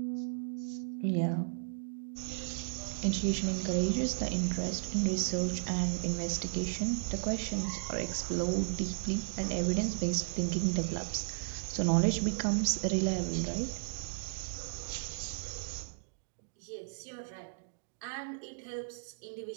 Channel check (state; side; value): silent; left; digital silence